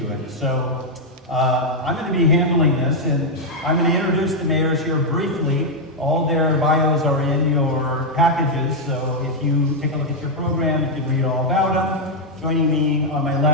it. So I'm going to be handling this, and I'm going to introduce the mayors here briefly. All their bios are in your packages, so if you take a look at your program, you can read all about them. Joining me on my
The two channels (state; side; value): normal; both; correlation 0.00